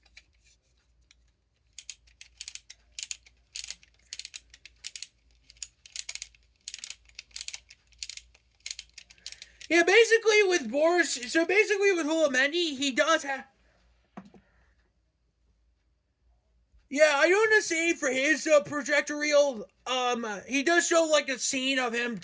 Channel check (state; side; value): identical; both; correlation 1.00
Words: Yeah, basically with Boris, so basically with Hulamendi, he does have. Yeah, I don't want to say for his projector reel, he does show like a scene of him